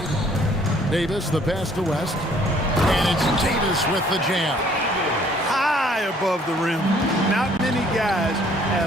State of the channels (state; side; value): normal; both; correlation 0.60